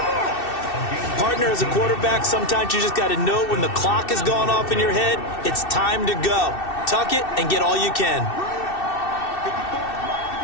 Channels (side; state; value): right; late; 2.6 ms